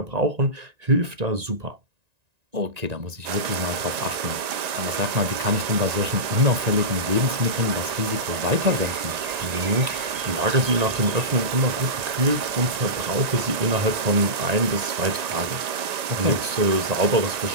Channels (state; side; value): late; left; 1.9 ms